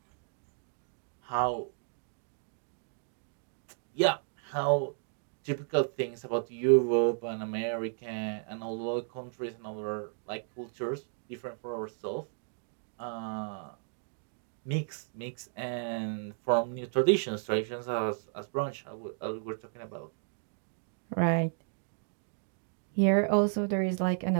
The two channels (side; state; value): left; silent; digital silence